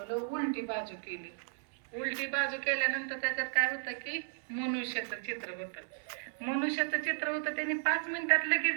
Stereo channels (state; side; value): silent; left; 55 dB below the other